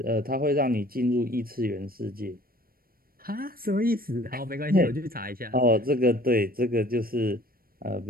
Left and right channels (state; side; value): late; left; 0.43 ms